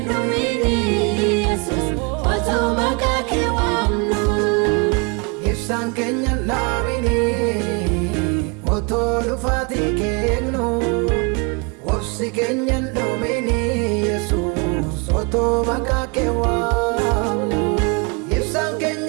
dhumini Yesuus otoo maqaa kee waamnu Ibsaan keenya naamini Otoo dhufaatii kennu obsi keenya dhumini Yesuus otoo maqaa kee waamnu Ibsaan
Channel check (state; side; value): quieter; left; 31.6 dB